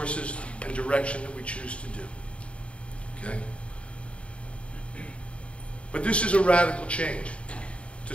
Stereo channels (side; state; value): right; late; 0.061 ms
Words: and direction that we choose to do. Okay? But this is a radical change